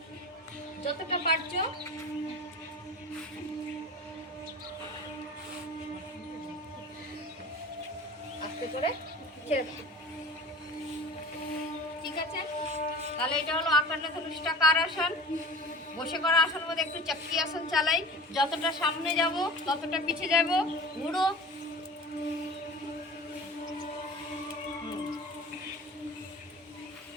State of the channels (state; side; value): normal; both; correlation 0.37